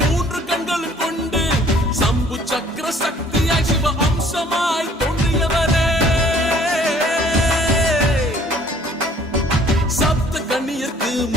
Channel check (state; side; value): normal; both; correlation 0.57